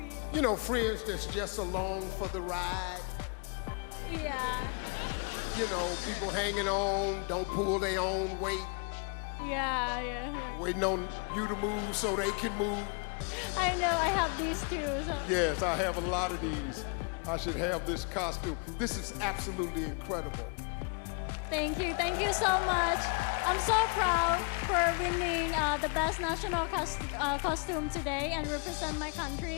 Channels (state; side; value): quieter; right; 35.4 dB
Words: You know, friends that's just along for the ride. Yeah. You know, people hanging on, don't pull their own weight, Yeah. waiting on you to move so they can move. I know, I have these too. So. Yes, I have a lot of these. I should have this costume. This is absolutely incredible. Thank you so much. I'm so proud for winning the best national costume today and represent my